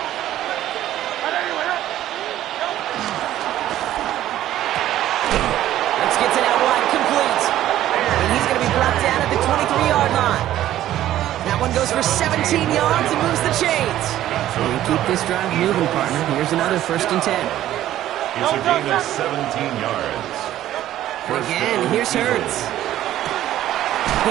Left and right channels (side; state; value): left; quieter; 13.1 dB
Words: Gets it out wide, complete. And he's going to be brought down at the 23-yard line. That one goes for 17 yards and moves the chains. And keep this drive moving, partner. Here's another 1st and 10. It's a gain of 17 yards. Again, here's Hurts.